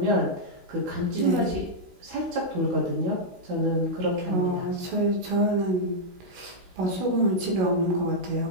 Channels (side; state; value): left; late; 16 ms